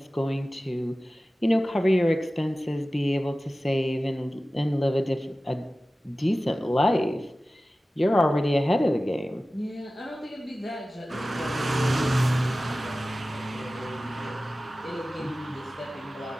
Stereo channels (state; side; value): normal; both; correlation 0.96